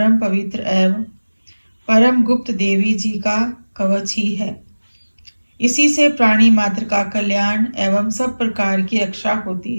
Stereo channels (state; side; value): inverted; both; correlation -1.00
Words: पवित्र एवं परम गुप्त देवी जी का कवच ही है। इसी से प्राणी मात्र का कल्याण एवं सब प्रकार की रक्षा होती